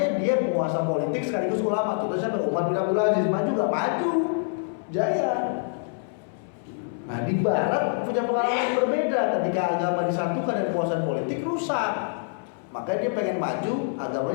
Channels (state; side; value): silent; right; 61 dB below the other